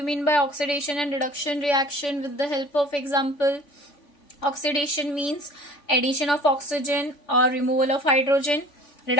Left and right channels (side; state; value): right; late; 3.5 ms